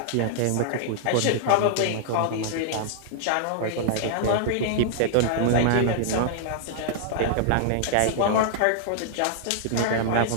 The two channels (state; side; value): different; both; correlation -0.01